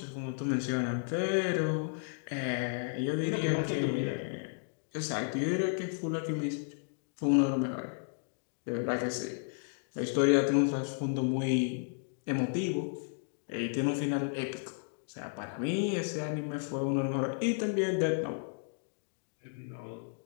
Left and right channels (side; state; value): right; silent; digital silence